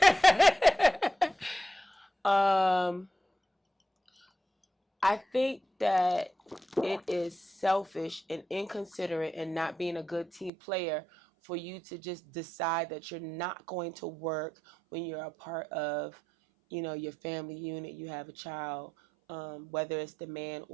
that. um, I think that it is selfish and inconsiderate and not being a good team player for you to just decide that you're not going to work when you're a part of, your family unit. You have a child, whether it's the man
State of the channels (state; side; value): drops out; left; at 10.5 s